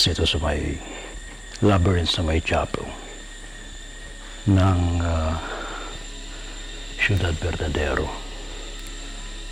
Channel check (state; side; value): identical; both; correlation 1.00